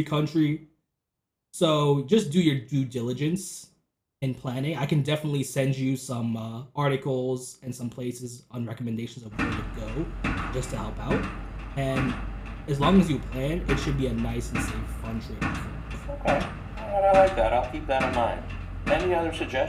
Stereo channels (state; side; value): identical; both; correlation 1.00